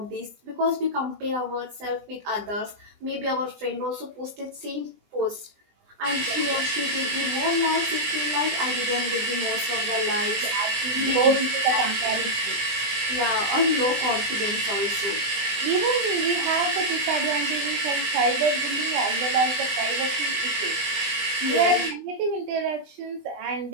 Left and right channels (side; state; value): left; late; 20 ms